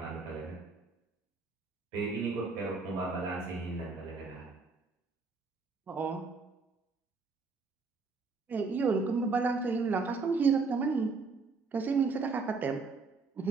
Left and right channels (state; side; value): quieter; left; 4.3 dB